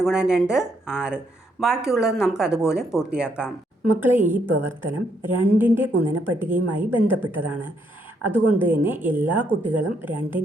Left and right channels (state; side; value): normal; both; correlation 0.74